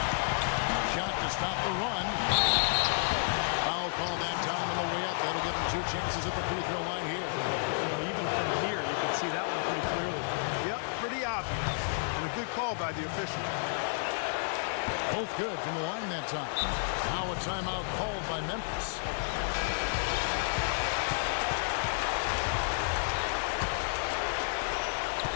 Shot to stop the run. Foul call that time on the way up. That'll give him 2 chances at the free throw line here. You know, even from here, you can see that one pretty clearly. Yep, pretty obvious. And a good call by the official. Both good from the line that time. Now a timeout called by Memphis.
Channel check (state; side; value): silent; right; digital silence